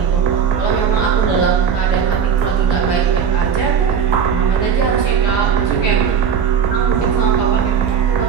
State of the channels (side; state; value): left; quieter; 7.2 dB